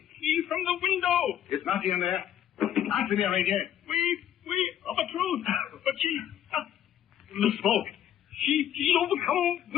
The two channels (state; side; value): quieter; right; 10.7 dB